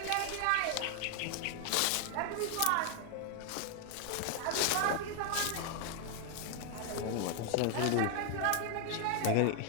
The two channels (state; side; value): different; both; correlation 0.00